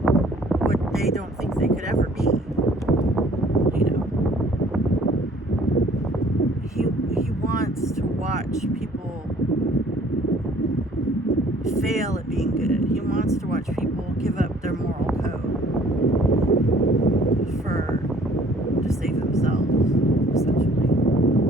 what they don't think they could ever be. You know, he wants to watch people fail at being good. He wants to watch people give up their moral code to save themselves, essentially.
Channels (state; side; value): normal; both; correlation 0.56